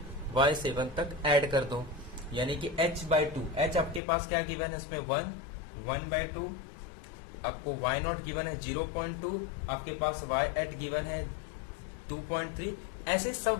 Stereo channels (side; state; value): right; drops out; at 4.0 s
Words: y7 तक ऐड कर दो, यानी कि h/2, h आपके पास क्या गिवन है इसमें 1/2, आपको y0 गिवन है 0.2, आपके पास y8 गिवन है 2.3, ऐसे सब